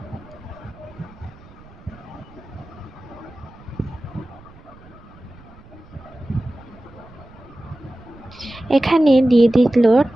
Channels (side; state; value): right; noise; rumble, 22 dB below the sound